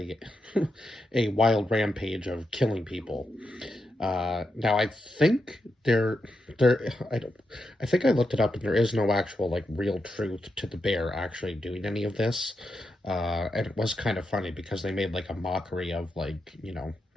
a wild rampage of killing people. Now I think I don't I think I looked it up and there is no actual like real truth to the bear actually doing any of this. And it was kind of funny because they made like a mockery of like,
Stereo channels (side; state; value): both; normal; correlation 0.85